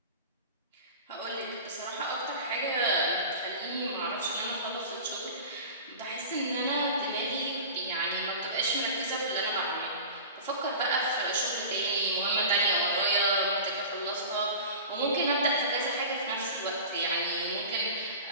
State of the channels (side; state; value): both; inverted; correlation -0.34